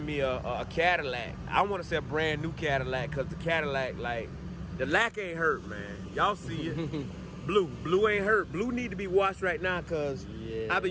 me a Cadillac. I want to say a brand new Cadillac, because the Cadillac, like, the lack ain't hurt, man. Y'all see it. Blue ain't hurt. Blue need to be washed right now, because I've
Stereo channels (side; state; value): both; identical; correlation 1.00